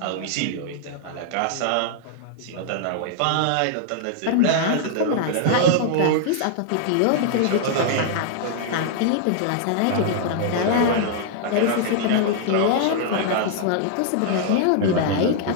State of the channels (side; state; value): both; different; correlation -0.01